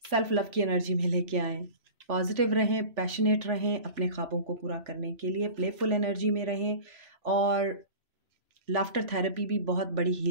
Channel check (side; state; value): left; late; 3.4 ms